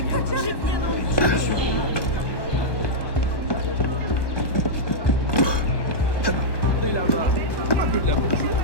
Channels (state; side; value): late; right; 1.1 ms